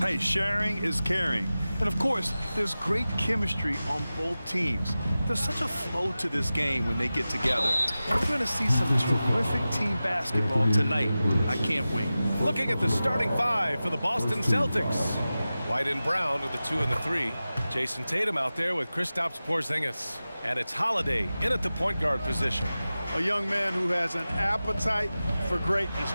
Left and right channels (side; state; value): both; inverted; correlation -0.95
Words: sharing is caring. And of course, there's great chemistry on both teams. There's such a flow to this game when they get together. And we're going to see some terrific team basketball tonight. I can't wait. Looking at the starting five for the Boston Celtics. White and Brown are the 2 and the 3. Jason Tatum out there with Kristaps Porzingis. And it's Holiday in at the point guard position. A young man who has an appetite for greatness,